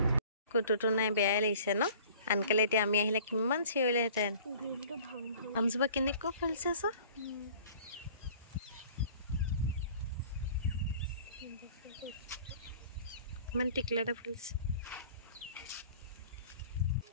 কুটুটো নাই বেয়াই লাগিছে ন আনকালে এতিয়া আমি আহিলে কিমান চিঞৰিলেহেঁতেন আমজোপা কেনেকুৱা ফুলিছে চ ইমান টিকলা এটা ফুলিছে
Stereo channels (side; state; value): both; inverted; correlation -0.48